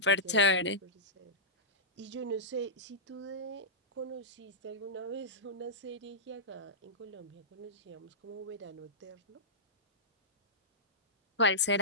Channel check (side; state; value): both; normal; correlation -0.16